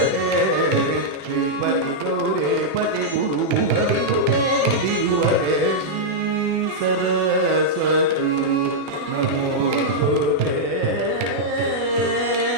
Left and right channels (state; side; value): late; left; 20 ms